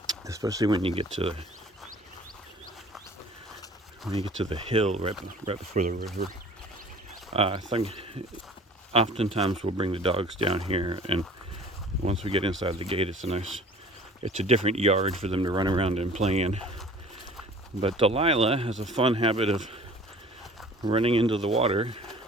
Especially when you get to when you get to the hill right before the river. I think oftentimes we'll bring the dogs down here, and once we get inside the gate, it's a different yard for them to run around and play in. But Delilah has a fun habit of running into the water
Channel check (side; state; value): both; normal; correlation 0.48